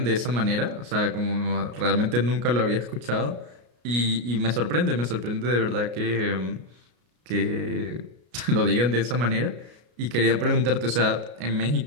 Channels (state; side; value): late; left; 33 ms